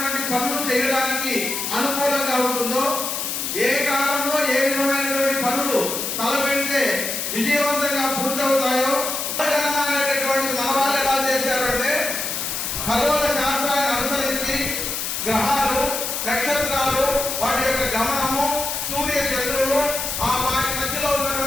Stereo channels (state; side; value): noise; left; hiss, 3 dB below the sound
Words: పనులు చేయడానికి అనుకూలంగా ఉంటుందో, ఏ కాలంలో ఏ విధమైనటువంటి పనులు తలపెడితే విజయవంతంగా పూర్తవుతాయో అనేటటువంటి మన వాళ్ళు ఎలా చేశారంటే ఖగోళ శాస్త్రాన్ని అనుసరించి గ్రహాలు, నక్షత్రాలు, వాటి యొక్క గమనము, సూర్య చంద్రులు, వాటి మధ్యలో